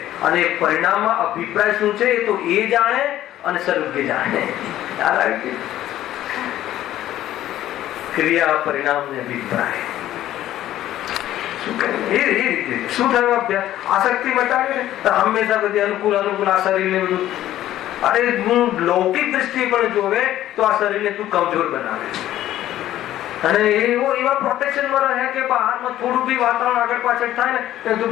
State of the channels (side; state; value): right; quieter; 13.2 dB